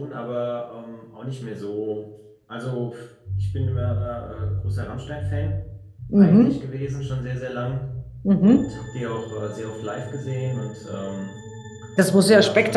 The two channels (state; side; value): identical; both; correlation 1.00